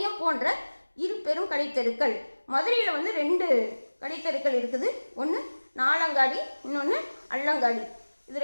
போன்ற இரு பெரும் கடைத்தெருக்கள். மதுரையில் வந்து 2 கடைத்தெருக்கள் இருக்குது. ஒன்று நாலங்காடி, இன்னொன்று அல்லங்காடி. இது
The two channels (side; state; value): both; inverted; correlation -1.00